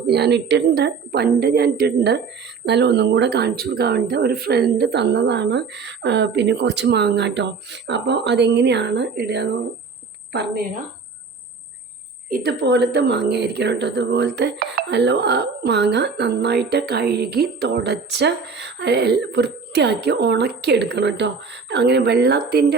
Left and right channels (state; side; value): quieter; left; 5.2 dB